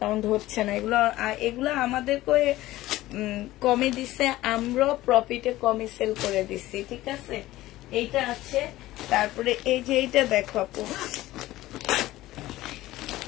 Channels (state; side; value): quieter; right; 16.5 dB